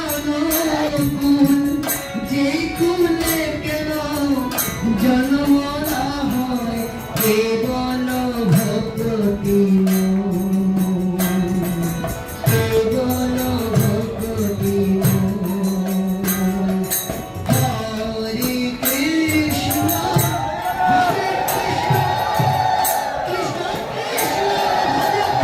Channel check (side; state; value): both; identical; correlation 1.00